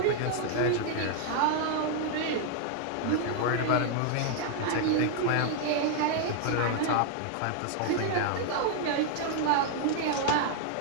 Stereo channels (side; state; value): both; different; correlation 0.00